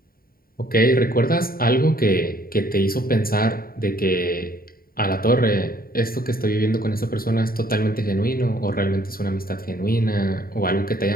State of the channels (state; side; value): late; right; 0.43 ms